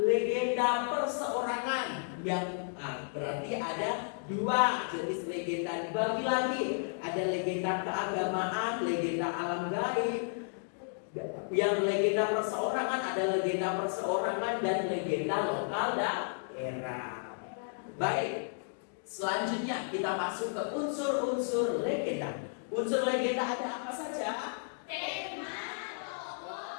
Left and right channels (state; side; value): silent; right; digital silence